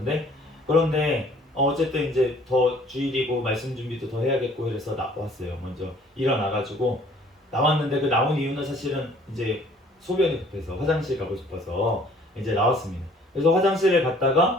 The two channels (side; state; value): both; normal; correlation 0.56